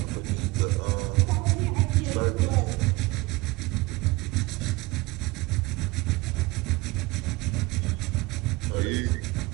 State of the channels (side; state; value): left; quieter; 22.4 dB